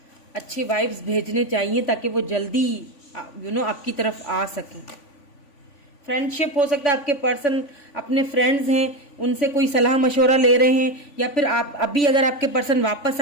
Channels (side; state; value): right; late; 3.5 ms